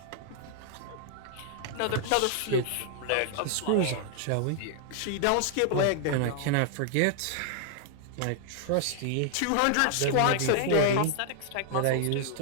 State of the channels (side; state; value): both; different; correlation 0.00